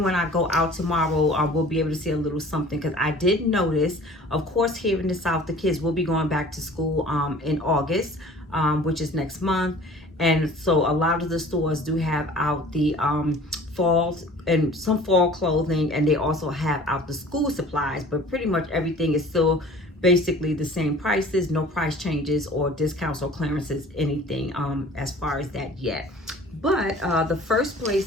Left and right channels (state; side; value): normal; both; correlation 0.47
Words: when I go out tomorrow, we'll be able to see a little something, because I did notice, of course, here in the South, the kids will be going back to school in August, which is next month. And so a lot of the stores do have out the fall and some fall clothing, and they also have out the school supplies, but pretty much everything is still basically the same prices, no price changes or discounts or clearances, anything as far as that yet. But the first